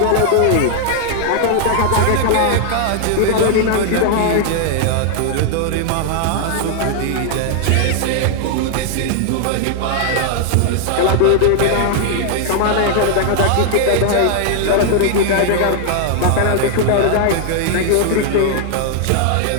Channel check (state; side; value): different; both; correlation 0.00